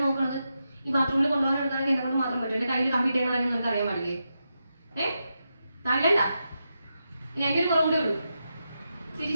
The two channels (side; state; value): both; inverted; correlation -0.87